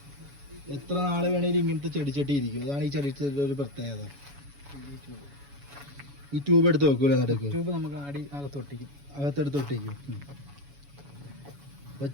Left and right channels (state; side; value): late; left; 7.1 ms